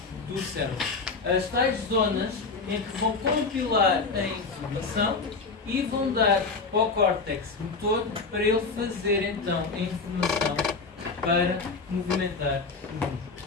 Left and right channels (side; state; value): right; quieter; 4.3 dB